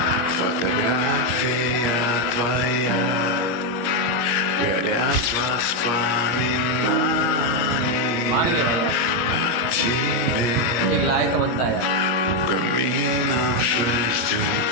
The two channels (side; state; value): right; late; 17 ms